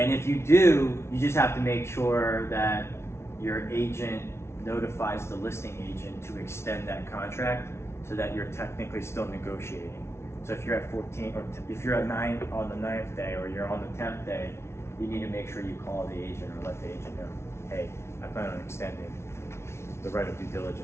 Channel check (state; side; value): late; right; 0.13 ms